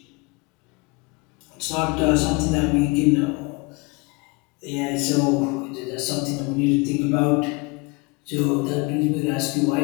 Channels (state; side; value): quieter; right; 28.0 dB